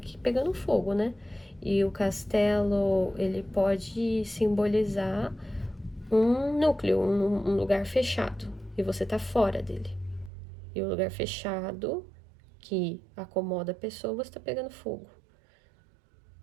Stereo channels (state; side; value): drops out; left; at 10.3 s